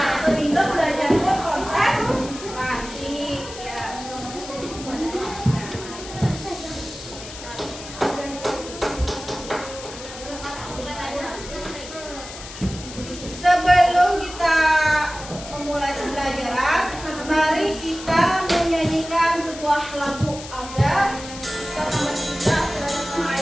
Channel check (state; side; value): noise; left; hiss, 13 dB below the sound